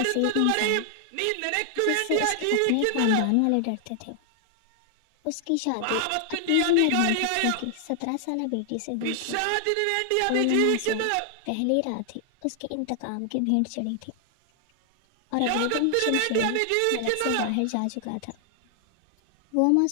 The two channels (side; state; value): both; different; correlation 0.00